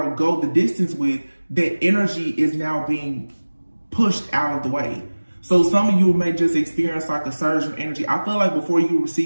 go the distance with, that energy is now being pushed out of the way. So some of you may just experience like a surge of energy. I feel like before you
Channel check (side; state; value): both; inverted; correlation -1.00